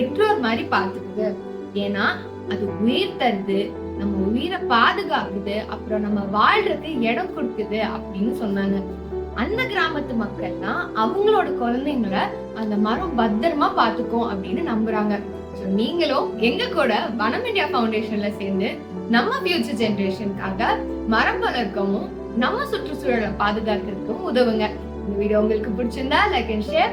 மாதிரி பாத்துக்குது. ஏன்னா அது உயிர் தருது, நம்ம உயிரை பாதுகாக்குது, அப்புறம் நம்ம வாழ்றதுக்கு இடம் கொடுக்குது அப்படின்னு சொன்னாங்க. அந்த கிராமத்து மக்கள்லாம் அவங்களோட குழந்தைங்களை அந்த மரம் பத்திரமா பாத்துக்கும் அப்படின்னு நம்புறாங்க. நீங்களும் எங்க கூட வனம் இந்தியா ஃபவுண்டேஷன்ல சேர்ந்து நம்ம ஃபியூச்சர் ஜெனரேஷனுக்காக மரம் வளர்க்கவும் நம்ம சுற்றுச்சூழலை பாதுகாக்கிறதுக்கும் உதவுங்க. இந்த வீடியோ உங்களுக்கு பிடிச்சிருந்தா லைக் அண்ட்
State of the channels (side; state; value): both; identical; correlation 1.00